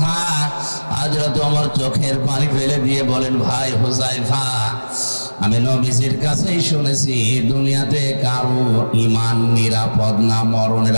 হযরত ওমর চোখের পানি ফেলে দিয়ে বলেন, ভাই হুসাইফা, আমি নবীজির কাছেই শুনেছি দুনিয়াতে কারো ঈমান নিরাপদ না মরণের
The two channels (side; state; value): both; inverted; correlation -1.00